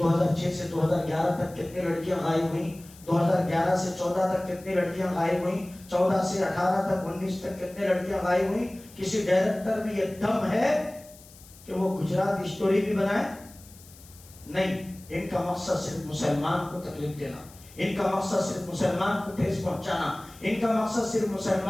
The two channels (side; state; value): left; noise; hiss, 22 dB below the sound